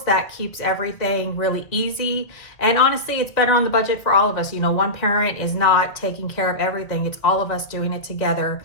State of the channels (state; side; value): late; right; 1.6 ms